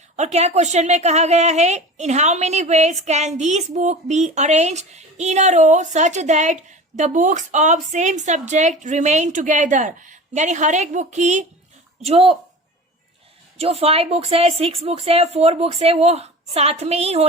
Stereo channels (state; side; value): normal; both; correlation 0.36